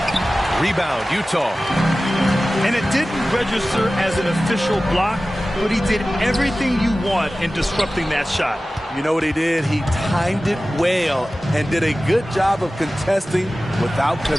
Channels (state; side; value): normal; both; correlation 0.96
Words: Rebound, Utah. And it didn't register as an official block, but he did everything you want in disrupting that shot. You know what he did? He timed it well and did a good job of contesting without